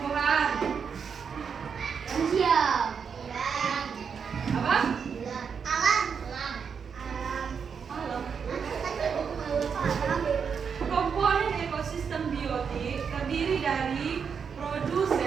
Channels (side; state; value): left; quieter; 6.4 dB